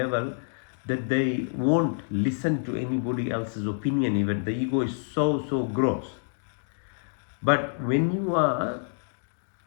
that they won't listen to anybody else's opinion even. The ego is so gross. But when you are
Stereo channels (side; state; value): right; silent; digital silence